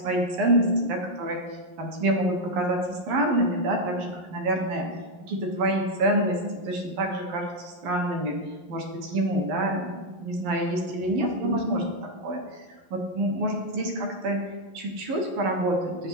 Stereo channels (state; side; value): late; left; 11 ms